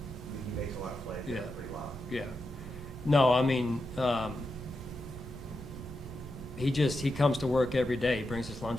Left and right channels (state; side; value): normal; both; correlation 0.87